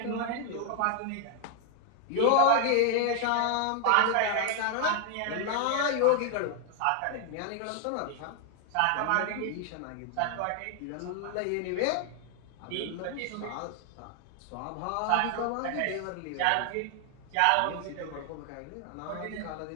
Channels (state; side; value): different; both; correlation 0.00